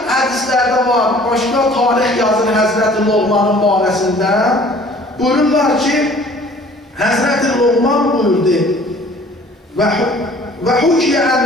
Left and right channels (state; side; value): normal; both; correlation 0.52